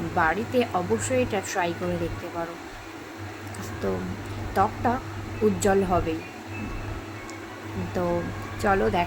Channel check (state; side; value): identical; both; correlation 1.00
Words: বাড়িতে অবশ্যই এটা ট্রাই করে দেখতে পারো। তো ত্বকটা উজ্জ্বল হবেই। তো চলো